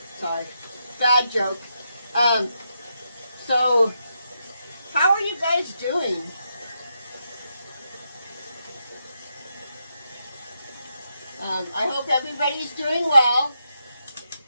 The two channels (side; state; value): both; inverted; correlation -0.83